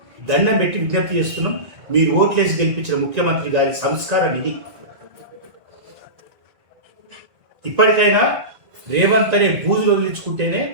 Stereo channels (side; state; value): left; late; 1.9 ms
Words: దండం పెట్టి విజ్ఞప్తి చేస్తున్నాం. మీరు ఓట్లేసి గెలిపించిన ముఖ్యమంత్రి గారి సంస్కారం ఇది. ఇప్పటికైనా రేవంత్ అనే బూజులు వదిలించుకుంటేనే